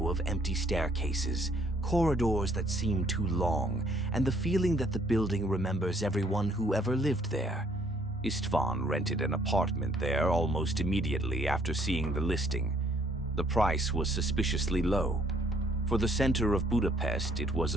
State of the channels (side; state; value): both; normal; correlation 0.65